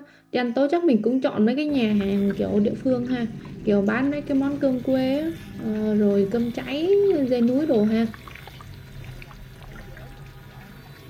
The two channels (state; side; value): identical; both; correlation 1.00